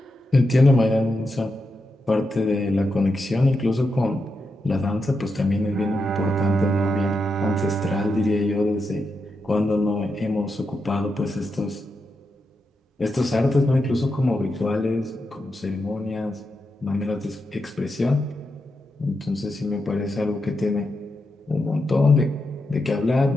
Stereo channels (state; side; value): normal; both; correlation 0.86